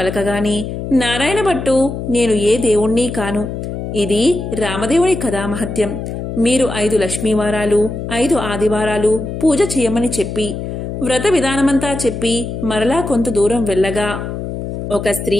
నారాయణ భట్టు, నేను ఏ దేవుణ్ణి కాను, ఇది రామదేవుని కథామహత్యం. మీరు 5 లక్ష్మీవారాలు 5 ఆదివారాలు పూజ చేయమని చెప్పి వ్రత విధానమంతా చెప్పి మరలా కొంత దూరం వెళ్ళగా ఒక స్త్రీ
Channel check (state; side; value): noise; left; hum, 6 dB below the sound